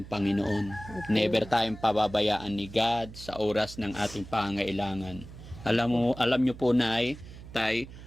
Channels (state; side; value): noise; right; hum, 15 dB below the sound